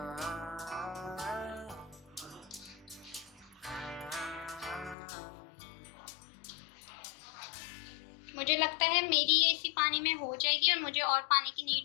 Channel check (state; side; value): drops out; right; at 5.0 s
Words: मुझे लगता है मेरी ये इसी पानी में हो जाएगी और मुझे और पानी की